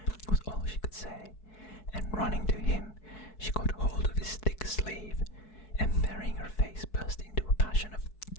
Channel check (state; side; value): late; right; 4.6 ms